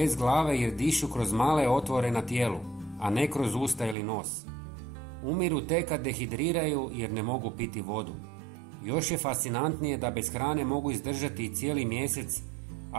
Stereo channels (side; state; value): left; drops out; at 4.0 s